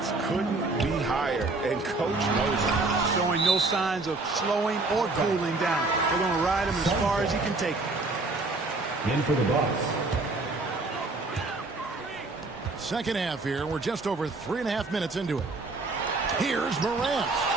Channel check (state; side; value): quieter; left; 3.4 dB